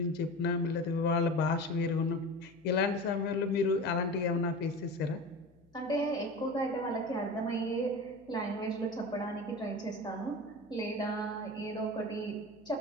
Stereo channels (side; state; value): left; noise; hum, 30 dB below the sound